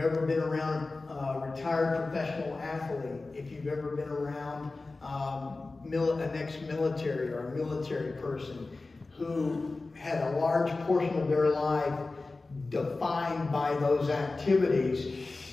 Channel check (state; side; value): quieter; right; 3.5 dB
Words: been around a retired professional athlete, if you've ever been around an ex-military or a military person who had a large portion of their life defined by those activities,